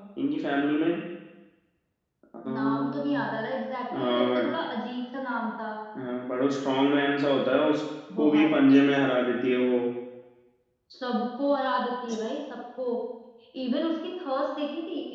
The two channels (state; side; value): identical; both; correlation 1.00